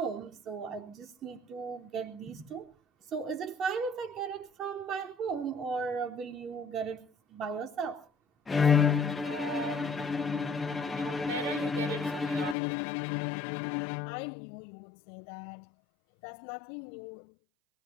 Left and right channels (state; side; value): drops out; right; at 12.6 s